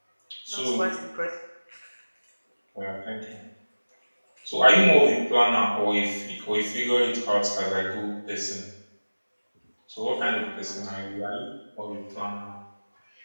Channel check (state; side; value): inverted; both; correlation -1.00